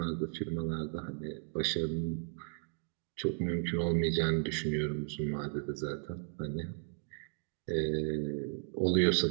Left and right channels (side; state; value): left; silent; 54 dB below the other